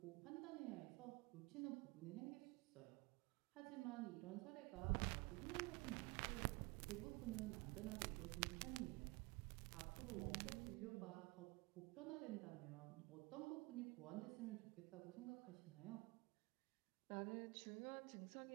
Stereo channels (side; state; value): left; quieter; 25.0 dB